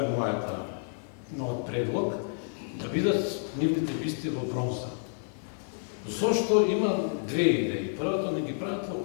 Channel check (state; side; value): silent; right; digital silence